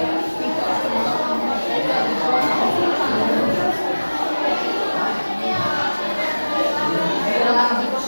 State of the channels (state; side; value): inverted; both; correlation -1.00